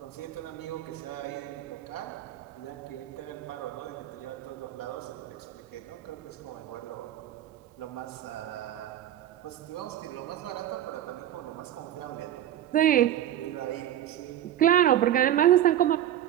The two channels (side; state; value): left; quieter; 11.7 dB